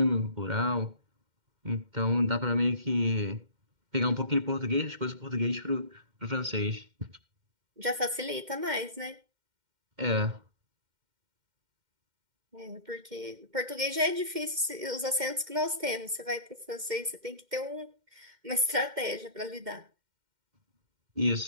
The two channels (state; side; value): late; left; 2.1 ms